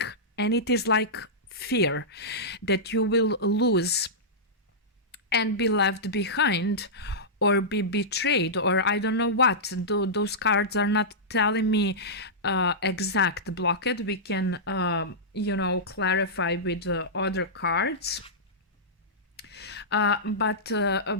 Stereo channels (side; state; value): both; normal; correlation -0.14